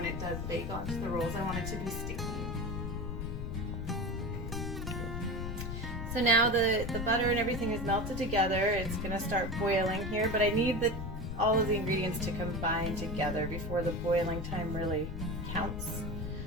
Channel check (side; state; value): left; noise; rumble, 5 dB below the sound